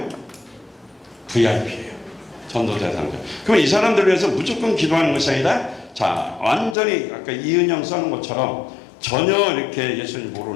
VIP예요. 전도 대상자. 그럼 이 사람들을 위해서 무조건 기도하는 것이 아니라 자, 완전히 아까 이은영 써는 것처럼 전혀 이렇게 예수님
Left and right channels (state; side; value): drops out; right; at 6.8 s